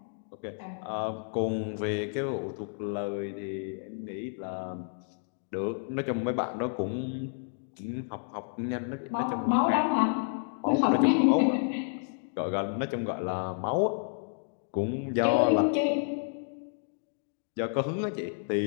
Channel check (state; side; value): silent; right; digital silence